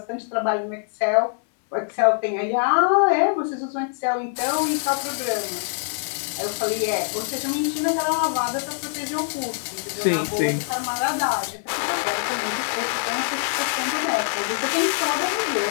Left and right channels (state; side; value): silent; right; 63 dB below the other